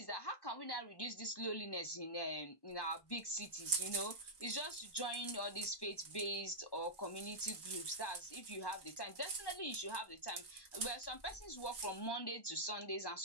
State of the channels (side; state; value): right; late; 1.1 ms